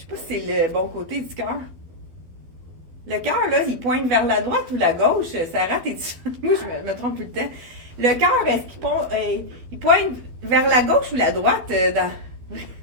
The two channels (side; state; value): left; late; 12 ms